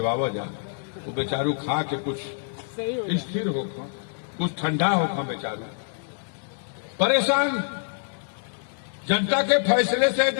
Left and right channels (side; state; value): right; silent; digital silence